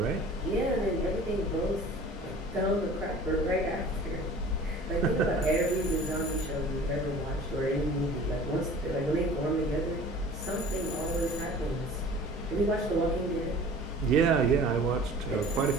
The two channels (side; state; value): both; normal; correlation 0.45